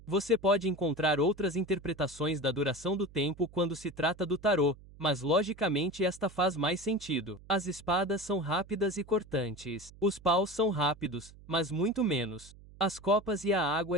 Você pode encontrar outras interpretações da duração do tempo quando se trata do tarô, mas logicamente esta faz mais sentido. As espadas são rápidas e cortantes. Os paus são rápidos, mas muito menos. As copas e a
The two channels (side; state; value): right; noise; hum, 21 dB below the sound